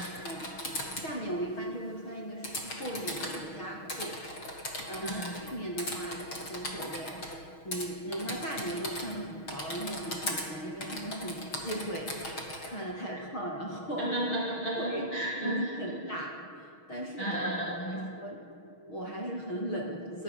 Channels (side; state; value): right; late; 6.3 ms